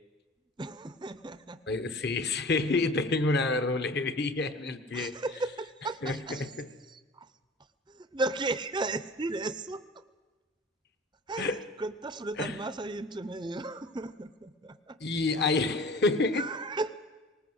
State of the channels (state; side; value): normal; both; correlation 0.42